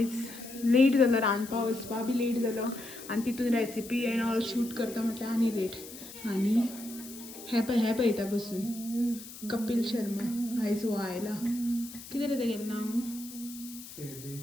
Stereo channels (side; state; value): left; noise; hiss, 14 dB below the sound